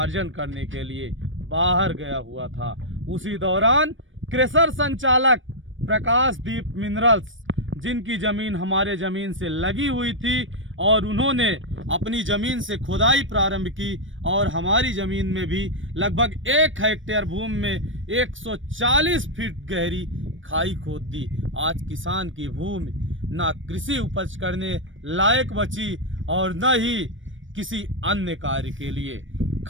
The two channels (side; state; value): left; late; 0.56 ms